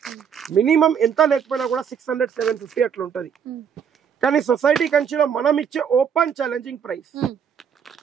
మినిమం ఎంత లేకపోయినా కూడా 600 750 అట్లా ఉంటది కానీ సొసైటీ కంచిలో మనం ఇచ్చే open challenging price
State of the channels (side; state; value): left; quieter; 7.5 dB